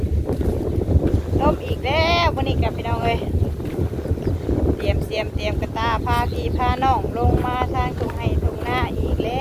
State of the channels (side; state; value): both; identical; correlation 1.00